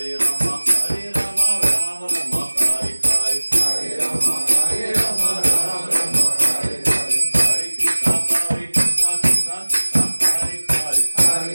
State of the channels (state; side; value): inverted; both; correlation -1.00